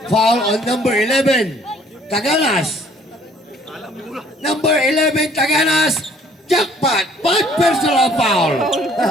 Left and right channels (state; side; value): normal; both; correlation 0.58